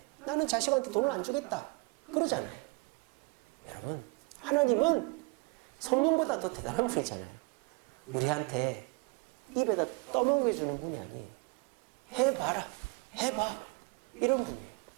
나는 자식한테 돈을 안 주겠다. 그러잖아요. 여러분, 하나님은 성령보다 더 대단한 분이잖아요. 우리한테 입에다 떠먹여 주는 분이 아니에요. 해봐라, 해봐, 이런 분이에요.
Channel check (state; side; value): quieter; left; 28.6 dB